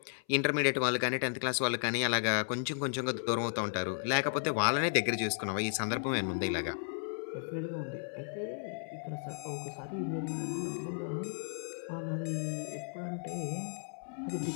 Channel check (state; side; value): silent; right; 55 dB below the other